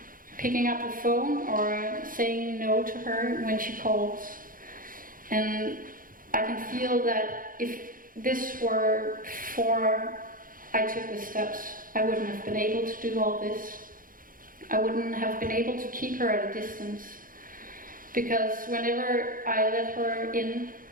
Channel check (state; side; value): late; left; 0.40 ms